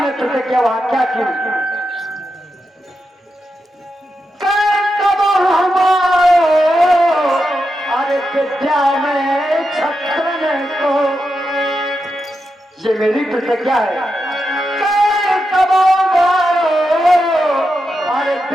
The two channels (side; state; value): both; normal; correlation 0.87